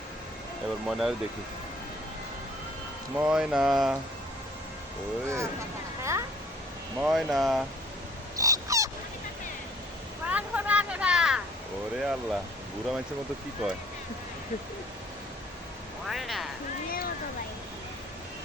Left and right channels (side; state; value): both; normal; correlation 0.55